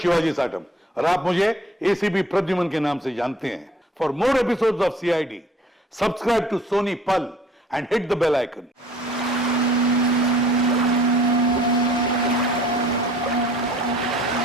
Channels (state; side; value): normal; both; correlation 0.54